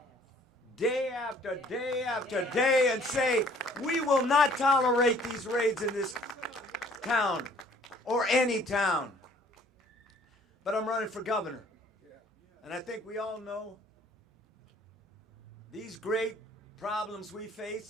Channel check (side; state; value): both; normal; correlation 0.57